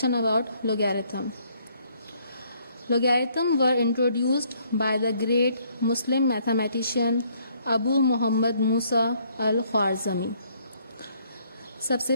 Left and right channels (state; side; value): inverted; both; correlation -0.66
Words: about logarithm. Logarithm were introduced by the great Muslim mathematician Abu Muhammad Musa al-Khwarizmi. सबसे